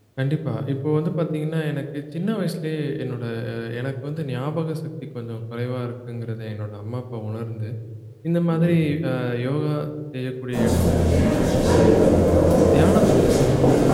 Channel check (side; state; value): both; identical; correlation 1.00